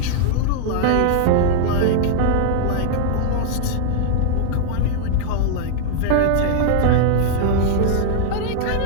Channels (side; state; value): both; different; correlation -0.01